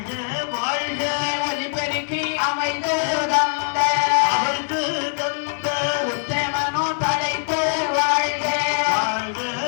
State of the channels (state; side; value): silent; right; 58 dB below the other